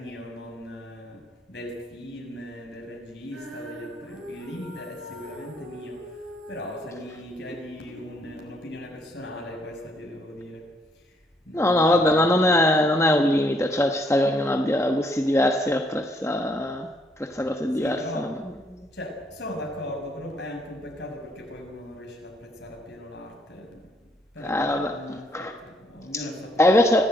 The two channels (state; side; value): normal; both; correlation 0.69